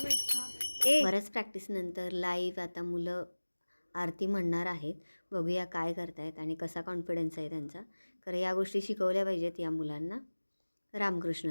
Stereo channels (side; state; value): both; inverted; correlation -1.00